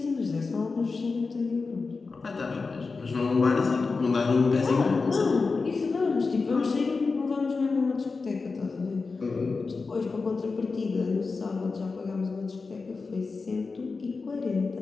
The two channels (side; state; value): right; quieter; 4.3 dB